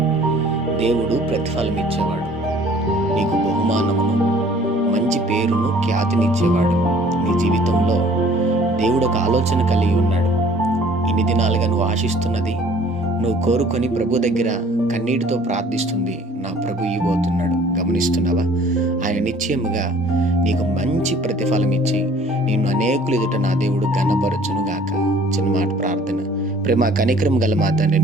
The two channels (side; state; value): both; normal; correlation 0.54